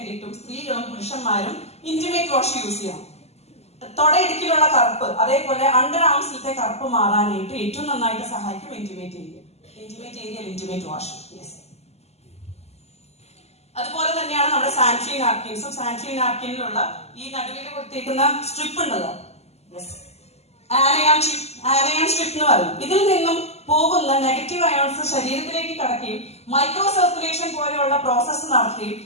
സ്ത്രീകളും പുരുഷന്മാരും ഇന്റിമേറ്റ് വാഷ് യൂസ് ചെയ്യണം. തൊടയിടുക്കിലുള്ള കറുപ്പ്, അതേപോലെ അണ്ടർ ആംസിലത്തെ കറുപ്പ് മാറാനായിട്ട് ഏറ്റവും നന്നായിട്ട് സഹായിക്കും ഇന്റിമേറ്റ് ഏരിയ. Intimate wash. അതുപോലെ തന്നെയാണ് നമ്മുടെ സാനിറ്ററി നാപ്കിൻസും. സാനിറ്ററി നാപ്കിനിലുള്ള ഈ നടുവിൽ കൊടുത്തേക്കുന്ന സ്ട്രിപ്പ് ഉണ്ടല്ലോ, ആനയാൻ സ്ട്രിപ്പ് എന്ന് പറയും. ഇതിൽ നിന്നും പോകുന്ന നെഗറ്റീവ് അയോൺസ് ശരീരത്തിലേക്ക് കടക്കുകയും മൈക്രോ സർക്കുലേഷൻ പോലെയുള്ള പ്രോസസ്സ് നടത്തുകയും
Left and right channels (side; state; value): right; late; 0.30 ms